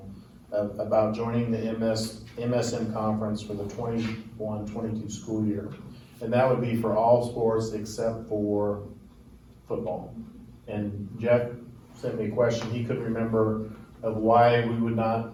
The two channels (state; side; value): identical; both; correlation 1.00